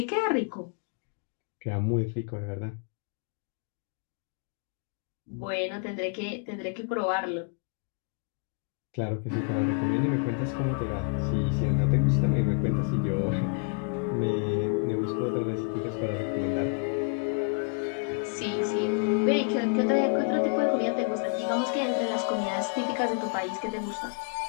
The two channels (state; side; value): quieter; right; 38.5 dB